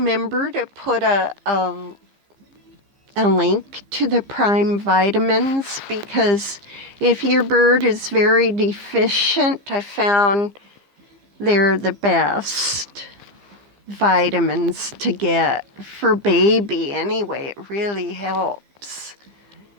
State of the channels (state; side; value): late; left; 15 ms